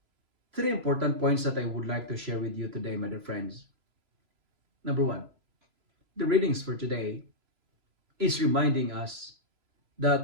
Three important points that I would like to share with you today, my dear friends. Number one, the readings for today is reminding us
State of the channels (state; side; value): late; left; 3.0 ms